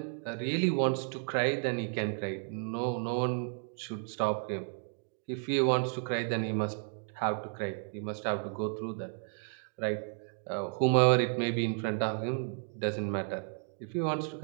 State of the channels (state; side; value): silent; left; 56 dB below the other